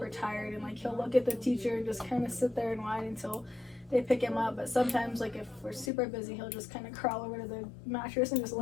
tired and like he'll look at the teacher and just kind of sit there and whine until they pick him up. But sometimes like if we're super busy, he'll just kind of crawl over to the mattress and just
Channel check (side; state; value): right; drops out; at 5.9 s